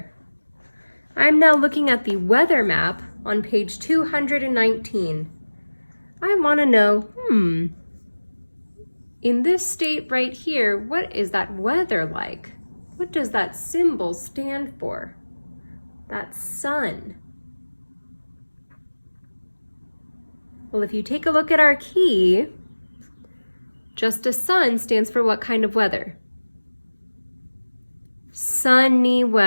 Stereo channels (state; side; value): inverted; both; correlation -1.00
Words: I'm now looking at the weather map on page 219. I want to know, in this state right here, what is that weather like? What does that symbol stand for? That sun. Well, if you take a look at our key, just a sun stands for what kind of weather? Sunny